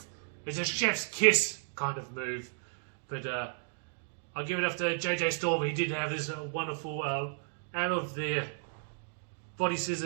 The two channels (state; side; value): silent; left; 55 dB below the other